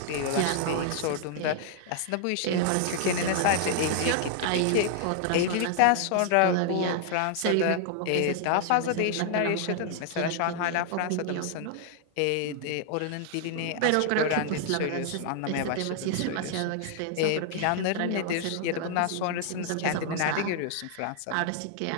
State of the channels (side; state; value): both; different; correlation 0.00